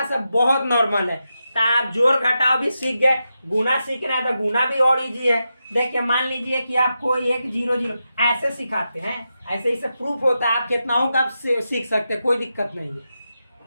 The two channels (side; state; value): both; inverted; correlation -0.88